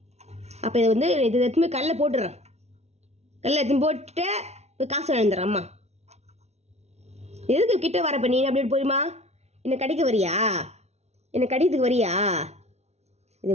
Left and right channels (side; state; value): left; late; 0.31 ms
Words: அப்போ இதை இது எடுத்துமே கல்லில் போட்டுடுறேன். கல்லில் எடுத்துன்னு போட்டு போய் காசு வாங்கிடுறேன். அம்மா, எதுக்கு கிட்ட வரப்ப நீ அப்படி போயுமா? என்னை கடிக்க வரியா? என்னை கடிக்கிறதுக்கு வரியா? இது